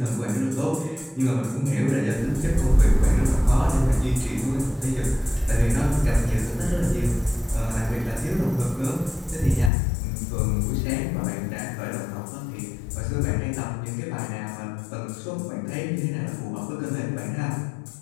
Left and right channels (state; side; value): drops out; right; at 9.7 s